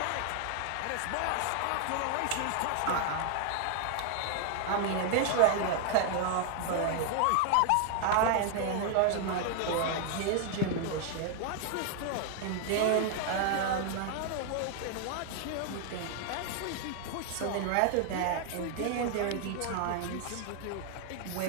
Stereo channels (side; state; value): both; different; correlation 0.00